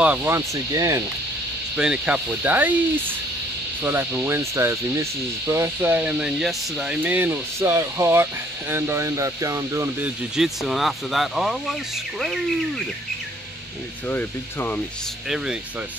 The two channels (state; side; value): normal; both; correlation 0.61